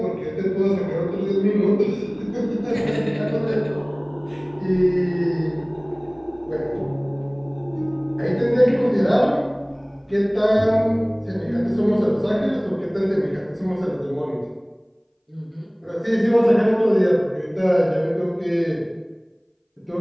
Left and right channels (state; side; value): identical; both; correlation 1.00